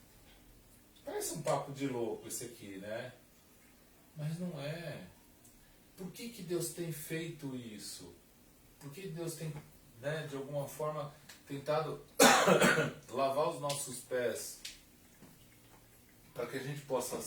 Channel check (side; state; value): both; identical; correlation 1.00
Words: Parece um papo de louco esse aqui, né? Mas não é. Por que Deus tem feito isso? Por que Deus tem, né, de alguma forma, tentado lavar os nossos pés? Para que a gente possa,